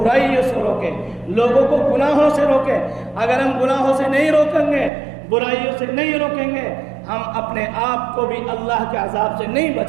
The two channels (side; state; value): left; drops out; at 4.9 s